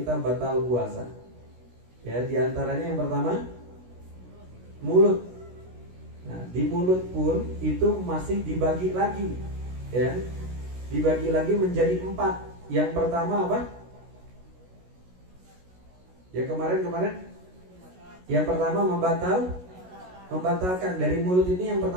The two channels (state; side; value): late; left; 16 ms